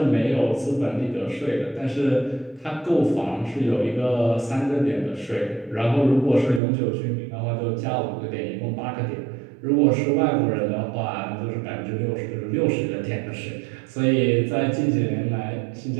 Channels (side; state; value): left; drops out; at 6.6 s